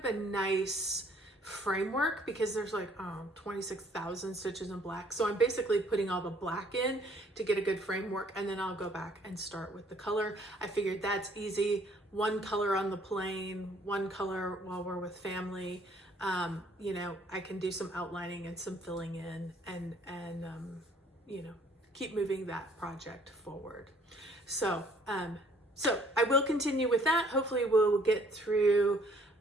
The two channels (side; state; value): both; normal; correlation 0.60